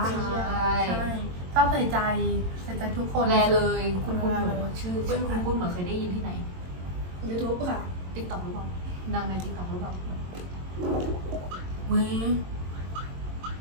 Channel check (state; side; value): late; left; 22 ms